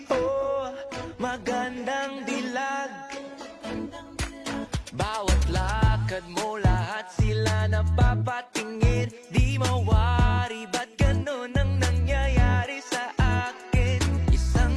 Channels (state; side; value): identical; both; correlation 1.00